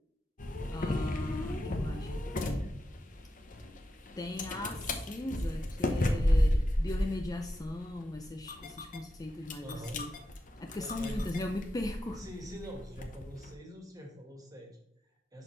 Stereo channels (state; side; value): normal; both; correlation 0.88